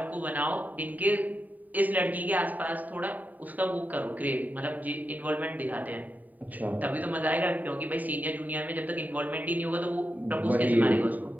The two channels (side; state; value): left; late; 0.080 ms